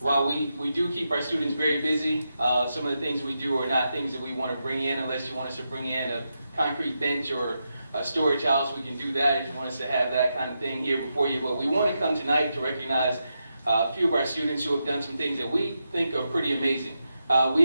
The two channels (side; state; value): both; inverted; correlation -0.86